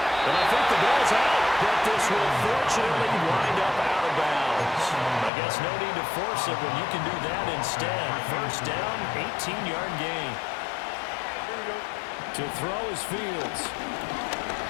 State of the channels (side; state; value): right; drops out; at 5.3 s